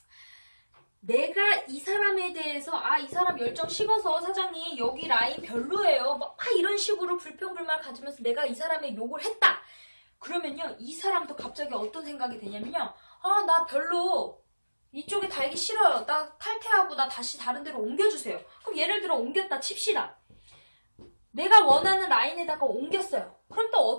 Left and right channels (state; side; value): inverted; both; correlation -1.00